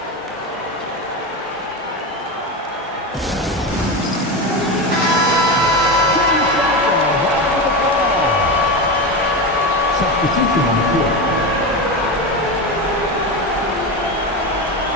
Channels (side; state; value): both; normal; correlation 0.19